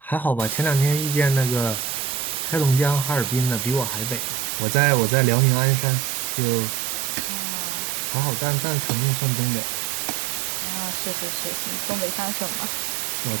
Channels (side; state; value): left; drops out; at 4.3 s